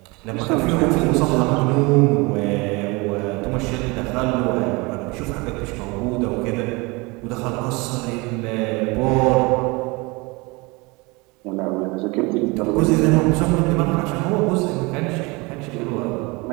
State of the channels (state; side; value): quieter; left; 25.8 dB